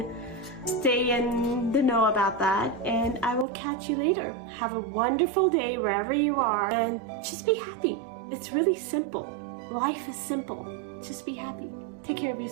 the know about that, and I will catch you later. Have a wonderful day wherever you are, and just be happy. It's really simple. Life is simple. Just be happy. Take care of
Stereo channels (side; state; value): left; drops out; at 3.5 s